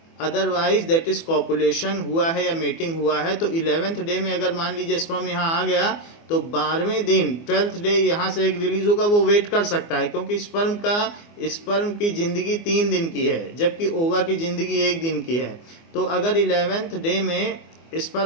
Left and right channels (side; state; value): right; late; 24 ms